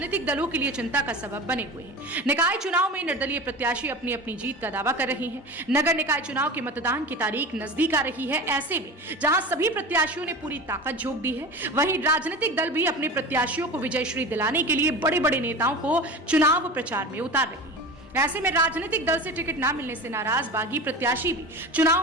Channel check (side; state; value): both; normal; correlation 0.31